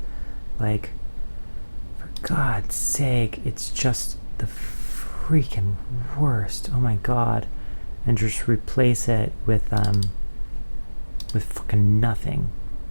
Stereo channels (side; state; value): both; inverted; correlation -1.00